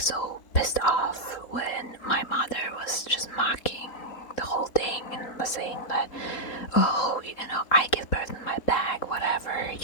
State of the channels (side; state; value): right; late; 4.0 ms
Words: so pissed off when my mother was just mocking the whole thing and was saying that, oh, you know, I give birth in my bag, whatever,